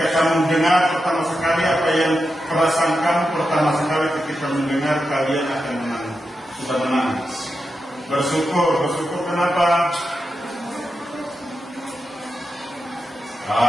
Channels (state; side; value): normal; both; correlation 0.88